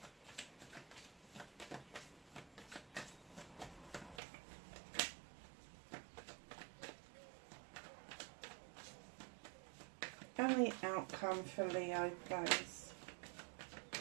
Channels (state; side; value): drops out; left; at 4.2 s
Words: And the outcome for Leo, please.